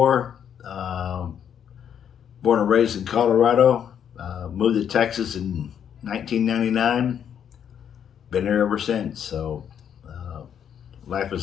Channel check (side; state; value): right; quieter; 8.7 dB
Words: Born and raised in Colorado. Moved to Texas in 1999. Been there ever since, so life